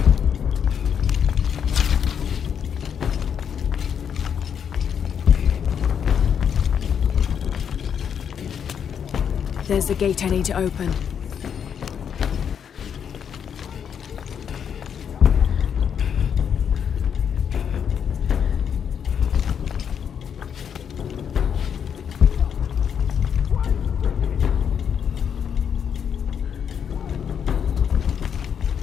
There's the gate I need to open.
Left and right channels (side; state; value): right; quieter; 7.8 dB